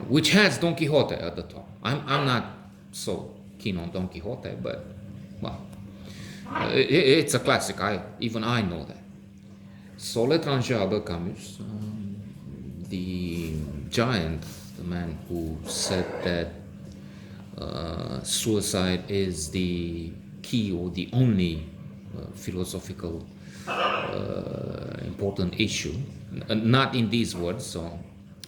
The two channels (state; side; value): identical; both; correlation 1.00